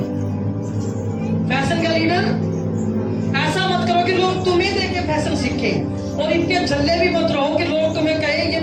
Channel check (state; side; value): identical; both; correlation 1.00